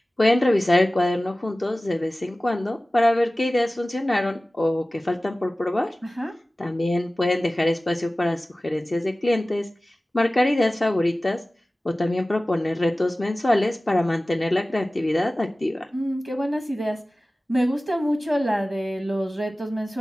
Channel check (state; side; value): normal; both; correlation 0.97